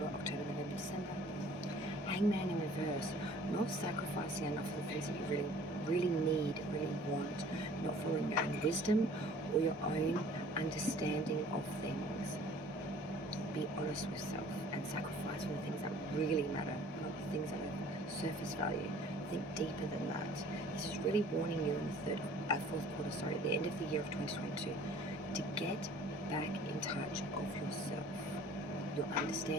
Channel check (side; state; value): both; normal; correlation 0.51